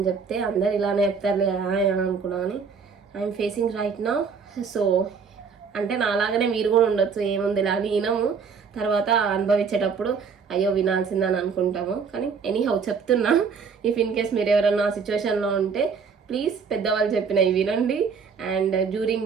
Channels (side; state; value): left; quieter; 5.8 dB